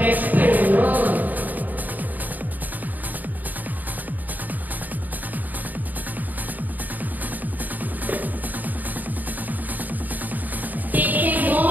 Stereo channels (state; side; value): late; left; 0.084 ms